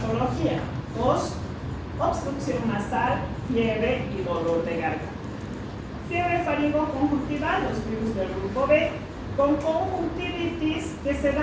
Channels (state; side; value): identical; both; correlation 1.00